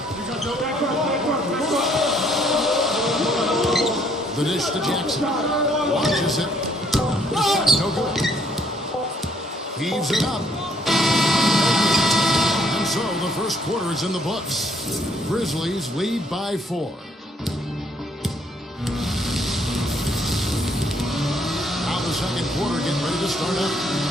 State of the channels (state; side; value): normal; both; correlation 0.66